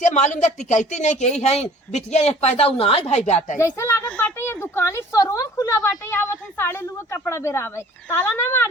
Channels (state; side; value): normal; both; correlation 0.50